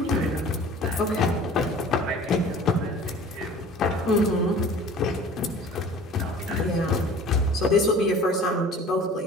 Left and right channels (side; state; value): both; normal; correlation 0.44